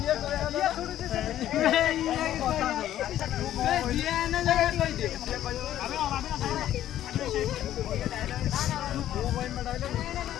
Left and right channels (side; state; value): right; quieter; 12.2 dB